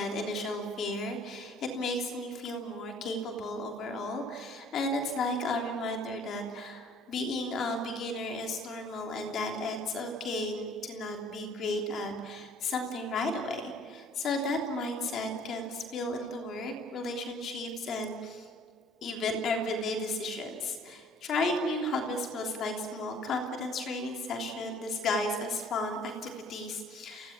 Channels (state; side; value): normal; both; correlation 0.55